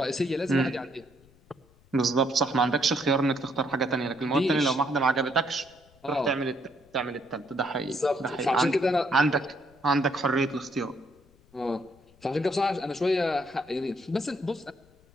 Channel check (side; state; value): left; noise; rumble, 30 dB below the sound